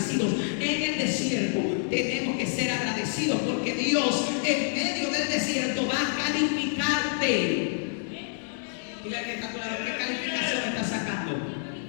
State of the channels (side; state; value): right; silent; digital silence